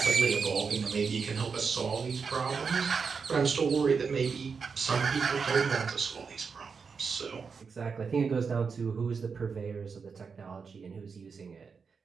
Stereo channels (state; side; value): quieter; left; 5.5 dB